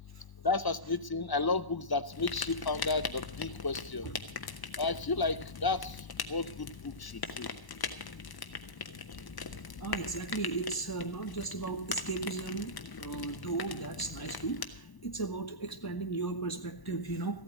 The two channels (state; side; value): late; right; 1.0 ms